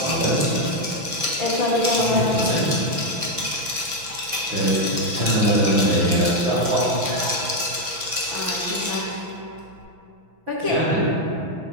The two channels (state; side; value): late; left; 6.0 ms